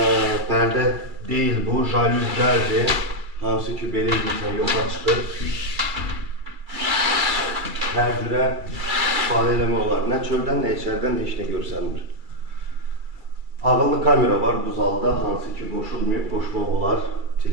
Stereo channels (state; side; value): late; left; 2.3 ms